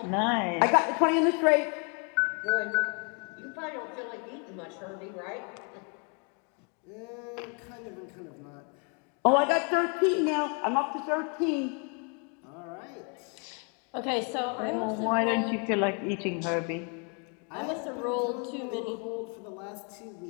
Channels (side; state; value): right; quieter; 37.2 dB